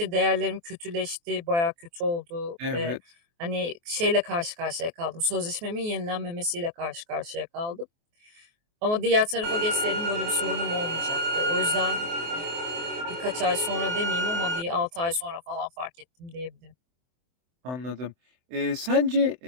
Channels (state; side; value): late; left; 24 ms